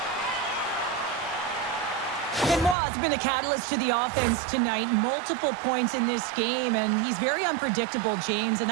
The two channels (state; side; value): drops out; left; at 2.8 s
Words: Benoit's been a catalyst to the offense tonight. Multiple points in this game, and he's very unpredictable, James, and